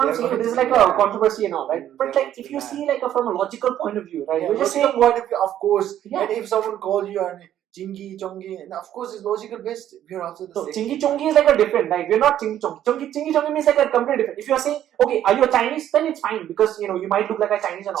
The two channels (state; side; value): quieter; left; 11.4 dB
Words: I'm saying. This is like a controversy and all, right? But like if you see like from a logical point of view, right? Yeah, You're just logical saying, point of view, of course. Yeah. And if someone calls you and Chingy, Chongi, and of course it's logical based, we're also the so same. Chingy Chongi is like a different, like we're not Chingy Chongi. Chingy Chongi means like a completely different. If you are saying, okay, are you a Chinese, then it's fine because you might look like a Chinese and